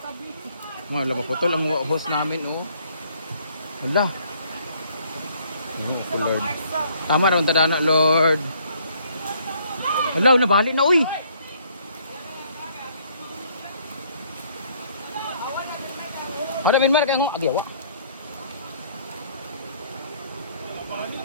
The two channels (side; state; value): both; inverted; correlation -0.63